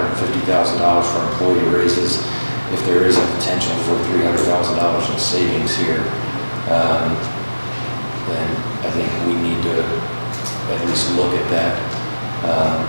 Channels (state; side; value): inverted; both; correlation -1.00